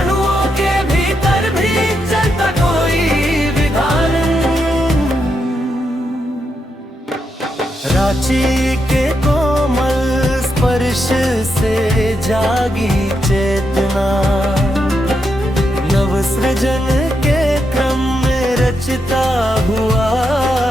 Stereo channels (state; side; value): normal; both; correlation 0.83